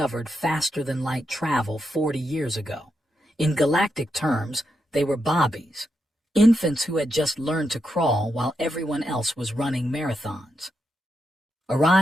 faster-than-light travel 40 years ago. In galactic terms, they were bobbies, infants who had just learned to crawl while everyone else was running marathons.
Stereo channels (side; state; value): both; normal; correlation 0.84